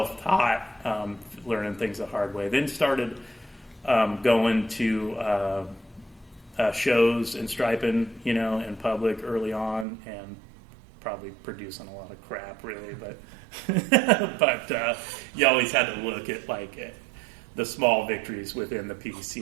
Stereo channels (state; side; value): drops out; left; at 9.9 s